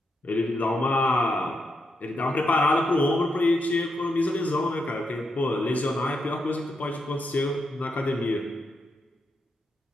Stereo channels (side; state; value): both; normal; correlation 0.82